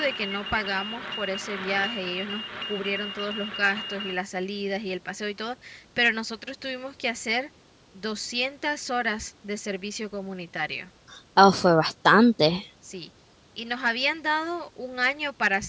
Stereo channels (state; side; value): identical; both; correlation 1.00